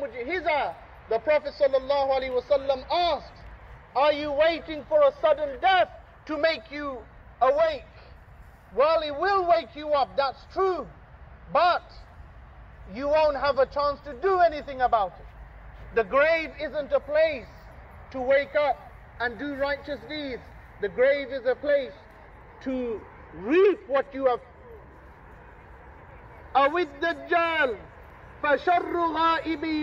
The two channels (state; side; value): identical; both; correlation 1.00